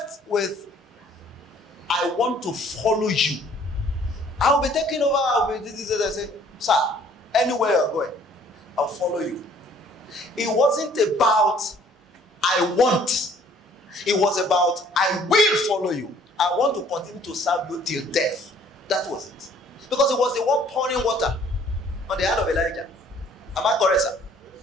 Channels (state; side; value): normal; both; correlation 0.58